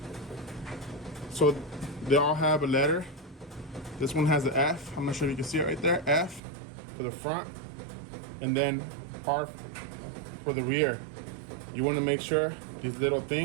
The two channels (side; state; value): left; drops out; at 6.4 s